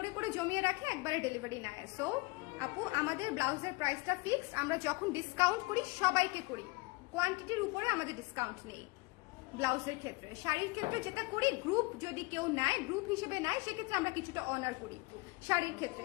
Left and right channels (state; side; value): quieter; right; 25.2 dB